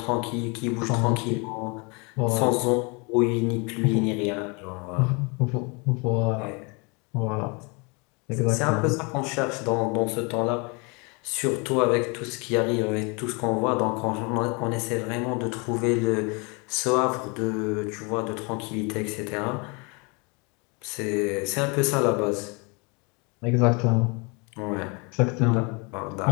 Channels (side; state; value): right; quieter; 30.8 dB